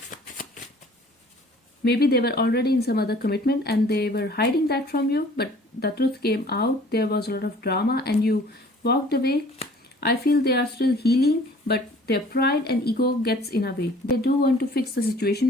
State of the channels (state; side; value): normal; both; correlation 0.52